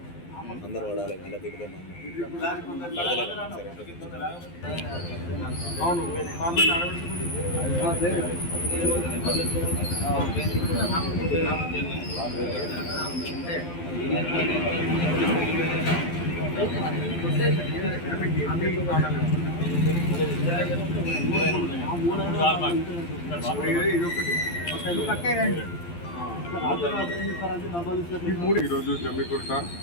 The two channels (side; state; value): right; late; 12 ms